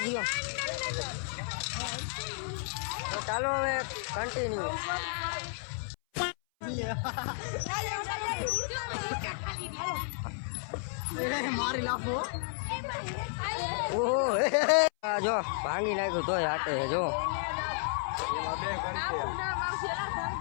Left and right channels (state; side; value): silent; right; 56 dB below the other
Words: તો ચાલો હવે કન્ટિન્યુ. મારી લાફો ઓહો જો ભાંગી નાખ્યું તોય હાથે જો